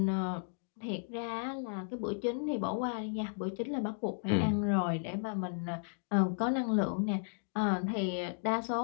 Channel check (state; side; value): silent; right; digital silence